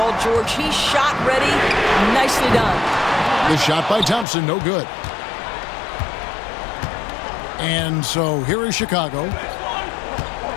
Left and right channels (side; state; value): right; drops out; at 4.2 s